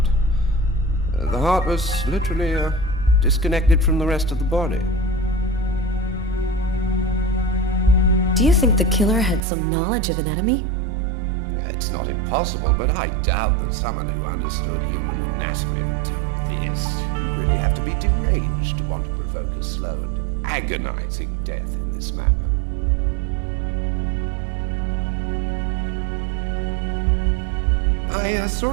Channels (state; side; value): drops out; left; at 9.4 s